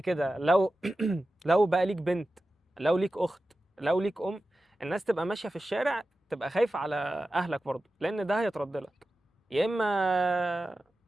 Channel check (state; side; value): normal; both; correlation 0.93